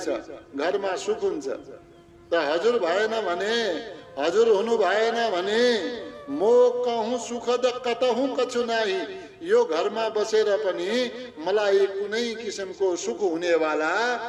घरमा सुख हुन्छ। त हजुर भएन भने, हजुर हुनु भएन भने, मोकहूँ सुखद कतहूँ कछु नाही। यो घरमा बसेर पनि मलाई कुनै किसिमको सुख हुनेवाला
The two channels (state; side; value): identical; both; correlation 1.00